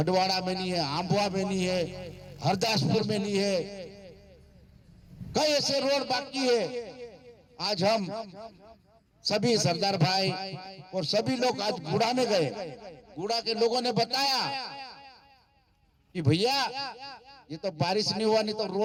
में नहीं है, आंबुआ में नहीं है, हरदासपुर में नहीं है, कई ऐसे रोड बाकी है। आज हम सभी सरदार भाई और सभी लोग आज गुड़ा में गए, गुड़ा के लोगों ने बताया कि भैया ये तो बारिश नहीं हुआ, नहीं तो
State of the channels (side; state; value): both; identical; correlation 1.00